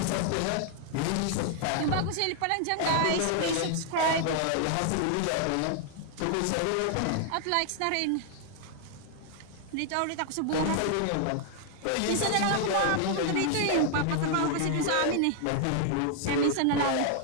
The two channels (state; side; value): different; both; correlation 0.00